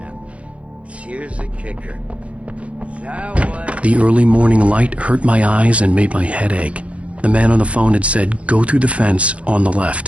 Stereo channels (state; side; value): late; left; 0.063 ms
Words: Here's here's the kicker. That was... The early morning light hurt my eyes and made my head ache. The man on the phone had said, "Go through the fence on the